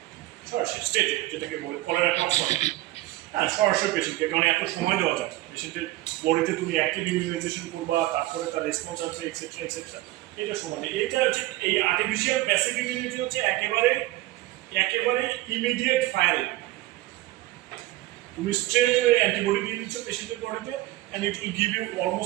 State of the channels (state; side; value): quieter; left; 17.4 dB